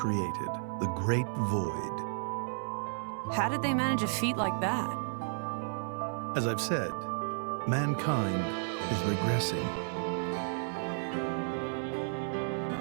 the Great Void. How did they manage a feat like that? As I've said, mankind is regressing.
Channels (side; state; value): left; silent; 56 dB below the other